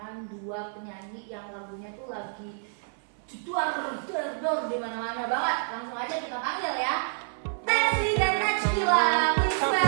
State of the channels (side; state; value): left; silent; 56 dB below the other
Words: dua penyanyi yang lagunya tuh lagi jedor di mana-mana banget. Langsung aja kita panggil ya. Tensi dan Najila, please